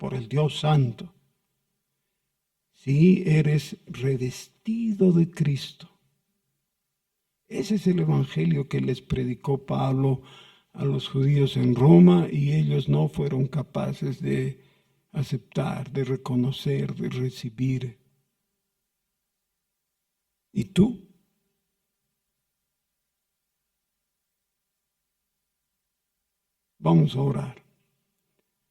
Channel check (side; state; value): both; identical; correlation 1.00